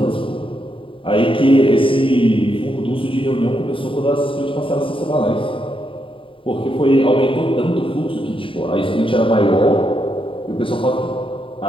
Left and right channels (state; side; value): late; right; 0.25 ms